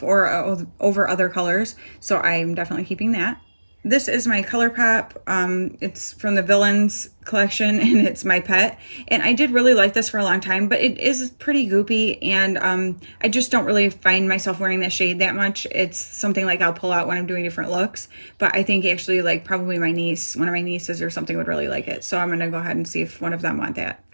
or over other colors. So I'm definitely keeping that. This is my Colourpop. It's from the Villains collection, and it's my pet. And I did really like this for a long time, but it is pretty goopy, and I just don't really find myself wearing that shade that much. It's something like I'll pull out when I'm doing different looks, but I think actually like probably my niece, one of my nieces or something would really like it. So I'm gonna go ahead and see if one of them want that.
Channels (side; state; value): both; inverted; correlation -1.00